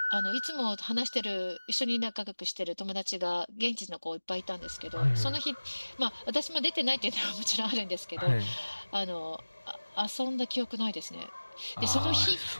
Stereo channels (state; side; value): inverted; both; correlation -1.00